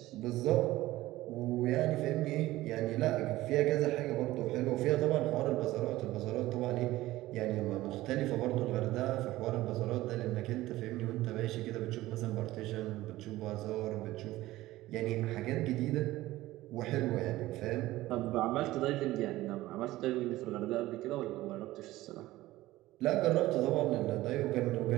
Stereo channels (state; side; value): quieter; left; 17.0 dB